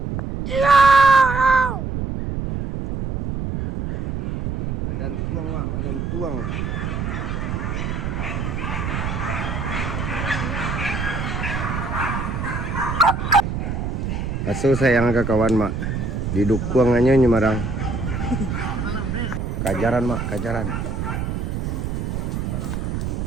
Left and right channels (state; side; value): noise; right; rumble, 3 dB below the sound